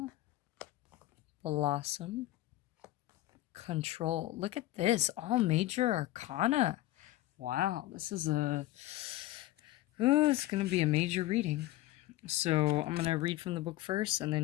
blossom, control. Look at this, all major arcana. Wow, this is it's going to be a major reading. So I'm going to read from the book first and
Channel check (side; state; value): right; quieter; 16.1 dB